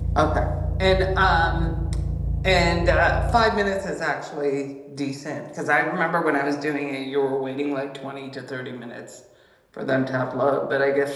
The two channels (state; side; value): identical; both; correlation 1.00